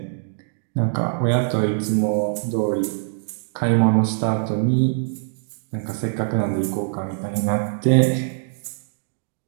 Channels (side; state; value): left; silent; digital silence